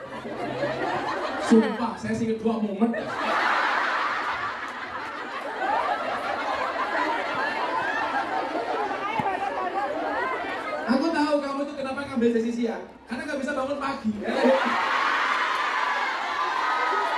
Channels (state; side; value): identical; both; correlation 1.00